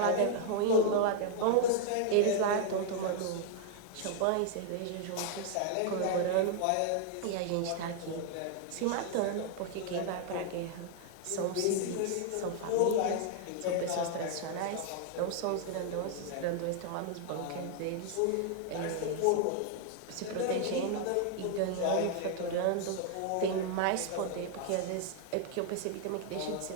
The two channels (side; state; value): both; different; correlation 0.00